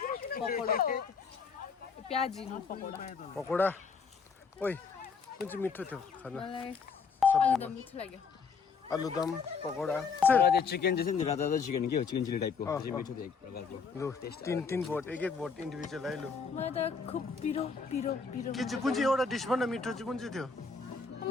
पकोडा प्याजी न पकोडा पकोडा ओइ कुन चाहिँ मिठो थियो खाना मलाई आलुदम मिठो लाग्यो आलुदम पकोडा तर त्यो चिकन चाहिँ नि राता राता चिकन के हो चिकन चिली टाइपको त्यो चाहिँ मिठो थियो एक प्रकारको लु तीन भोट एक भोट इन्डिभिजुअल आइलो मलाई त खुब पिरो पिरो पिरो के चाहिँ कुन चाहिँ एउटा डिस भन्न मिठो चाहिँ कुन चाहिँ थियो म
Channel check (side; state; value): right; quieter; 5.3 dB